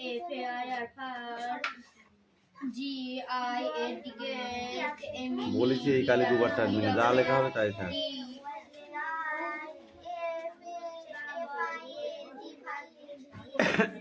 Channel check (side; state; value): both; identical; correlation 1.00